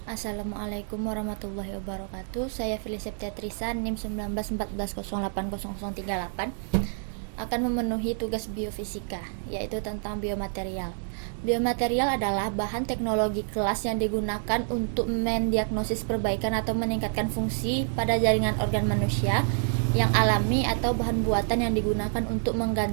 Assalamualaikum warahmatullahi wabarakatuh. Saya Felicia Teatrisa, NIM 1914080038 akan memenuhi tugas biofisika, yaitu tentang biomaterial. Biomaterial adalah bahan teknologi kelas yang digunakan untuk mendiagnosis perbaikan atau meningkatkan fungsi pada jaringan organ manusia yang alami atau bahan buatan yang digunakan untuk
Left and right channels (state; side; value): silent; left; 59 dB below the other